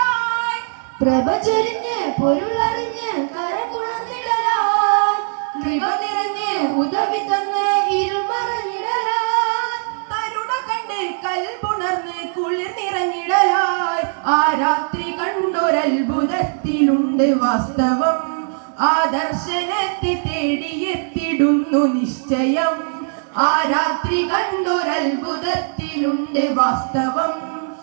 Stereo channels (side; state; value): left; silent; 60 dB below the other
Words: പ്രഭ ചൊരിഞ്ഞ് പൊരുളറിഞ്ഞ് കരപുണർന്നിടലായി, കൃപ നിറഞ്ഞ് ഉദവി തന്ന് ഇരുൾ മറഞ്ഞിടലായി. തരുണ കണ്ട് കൽപുണർന്ന് കുളിർ നിറഞ്ഞിടലായി. ആ രാത്രി കണ്ടൊരത്ഭുതത്തിലുണ്ട് വാസ്തവം, ആദർശനത്തെ തേടിയെത്തിടുന്നു നിശ്ചയം. ആ രാത്രി കണ്ടൊരത്ഭുതത്തിലുണ്ട് വാസ്തവം,